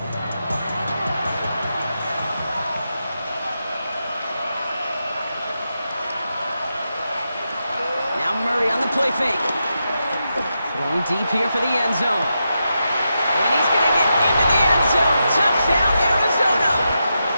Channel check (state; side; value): inverted; both; correlation -0.87